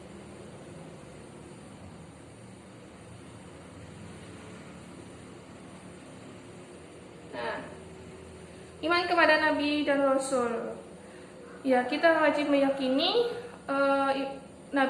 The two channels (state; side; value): identical; both; correlation 1.00